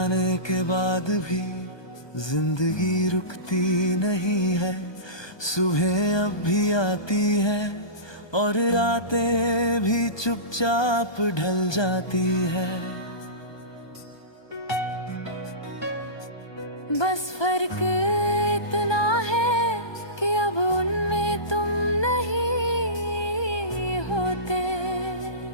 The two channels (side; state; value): right; late; 1.2 ms